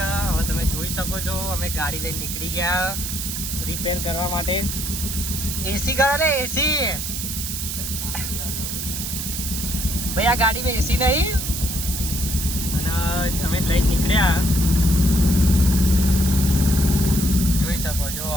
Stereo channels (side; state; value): right; noise; hiss, 4 dB below the sound